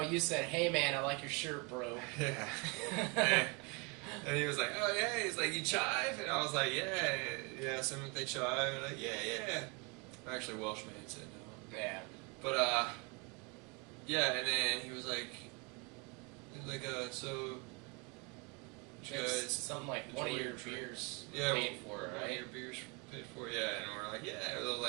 said, hey man, I like your shirt, bro. Yeah. And he was like, oh yeah. He's like, you chive? And I was like, yeah. Some they chive. And I'm like, yeah. Actually, Welshman said no. Yeah. But yeah. And then he was like, so, you guys, something like one of your beers paid for, right? One of your beers paid for, yeah. And we're like, yeah. They were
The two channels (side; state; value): left; quieter; 30.6 dB